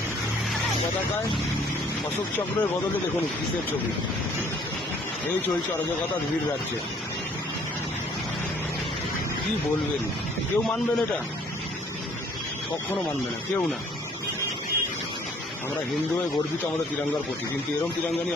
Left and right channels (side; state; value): both; normal; correlation 0.59